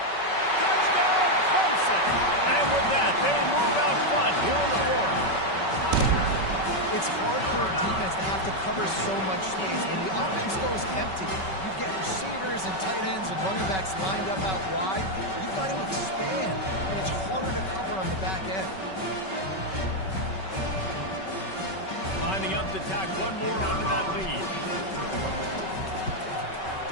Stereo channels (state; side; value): late; right; 5.3 ms